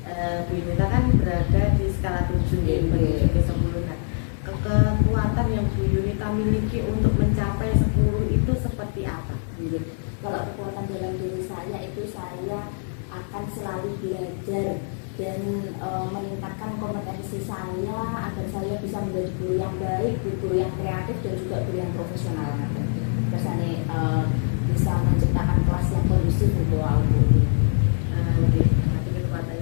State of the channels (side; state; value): right; silent; digital silence